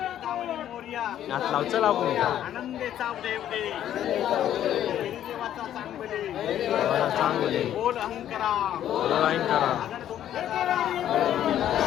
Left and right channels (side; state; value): right; quieter; 11.2 dB